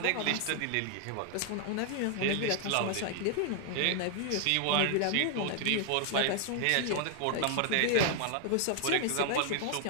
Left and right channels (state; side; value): different; both; correlation 0.00